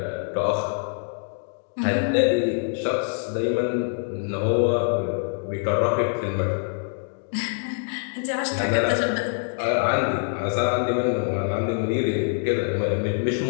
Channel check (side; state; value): right; silent; digital silence